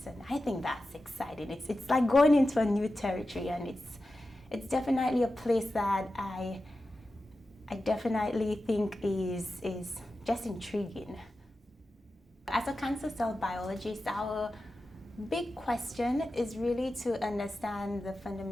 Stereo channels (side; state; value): both; normal; correlation 0.93